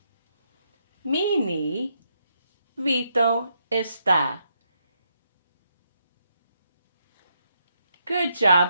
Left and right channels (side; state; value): both; inverted; correlation -0.78